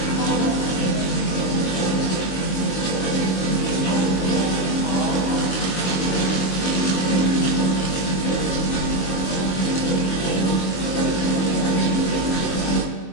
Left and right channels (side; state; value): right; late; 22 ms